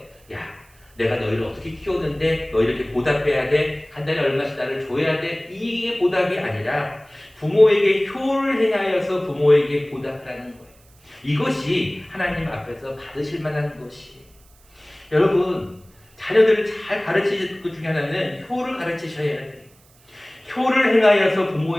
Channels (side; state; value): right; noise; hiss, 30 dB below the sound